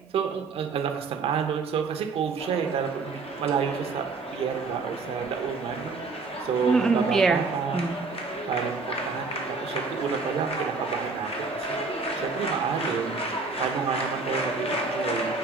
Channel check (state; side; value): quieter; left; 4.2 dB